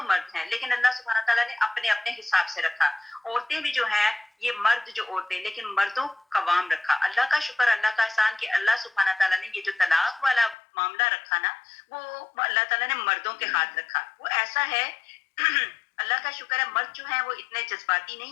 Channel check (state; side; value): drops out; right; at 10.6 s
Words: مرد ہیں، لیکن اللہ سبحانہ تعالیٰ نے اپنے اپنے حساب سے رکھا۔ عورتیں بھی جو ہیں یہ مرد جو عورتیں، لیکن مردوں قوام رکھا۔ اللہ کا شکر، اللہ کا احسان کہ اللہ سبحانہ تعالیٰ نے یہ جو طلاق والا معاملہ رکھا نا، وہ اللہ تعالیٰ نے مردوں کے ہاتھ رکھا۔ وہ ایسا ہے اللہ کا شکر ہے، مرد جو ہیں وہ اتنے جذباتی